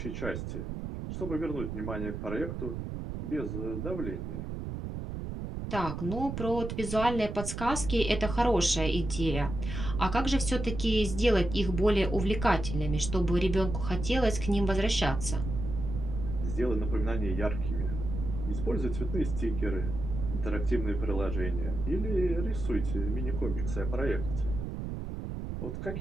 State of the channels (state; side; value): noise; right; rumble, 5 dB below the sound